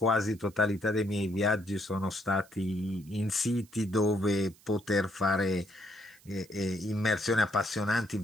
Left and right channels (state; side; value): noise; right; hiss, 27 dB below the sound